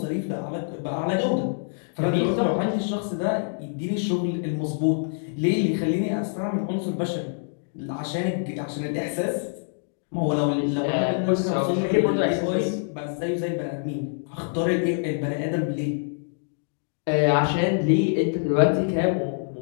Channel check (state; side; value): silent; right; digital silence